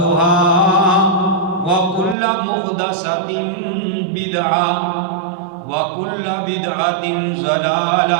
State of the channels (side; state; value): left; drops out; at 2.1 s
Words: وكل محدثة بدعة وكل بدعة